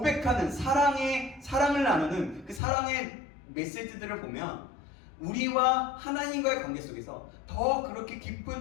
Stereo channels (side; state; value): right; drops out; at 2.6 s